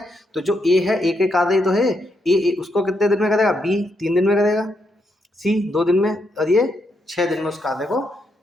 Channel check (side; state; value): both; normal; correlation 0.79